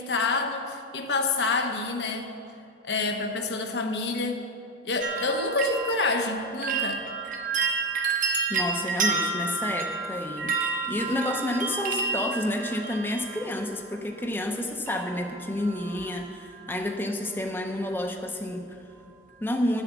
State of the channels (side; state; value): both; normal; correlation 0.27